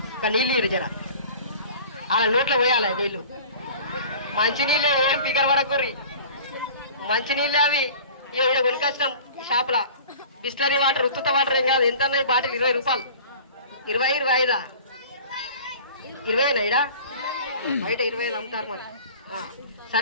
ఇక నీళ్ళు ఇరు జర, అలా నోట్లో పోయాలి నీళ్ళు. మంచినీళ్ళే, ఏం పికర్ పడకూర్రి. మంచినీళ్ళే అవి. ఇక్కడ కొనుకొచ్చినాం షాప్లా. బిస్లరీ వాటర్, ఉత్తుత వాటర్ ఏం కాదు. ఎంత అన్నాయి బాటిల్? 20 రూపాయలు. 20, 25 20 ఇడా బయట 25 అమ్ముతారు మరి.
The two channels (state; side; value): inverted; both; correlation -0.43